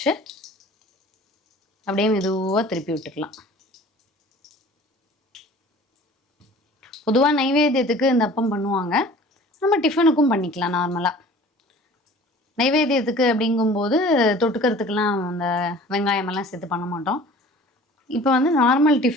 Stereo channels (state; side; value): normal; both; correlation 0.46